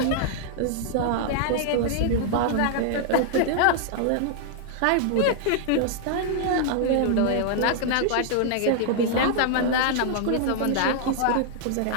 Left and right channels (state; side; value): different; both; correlation -0.01